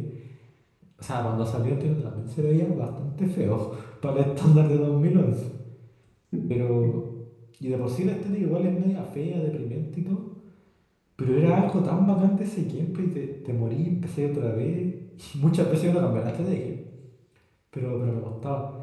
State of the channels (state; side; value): identical; both; correlation 1.00